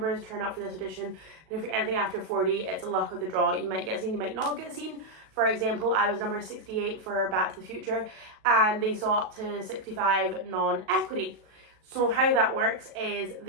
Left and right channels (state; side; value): late; left; 37 ms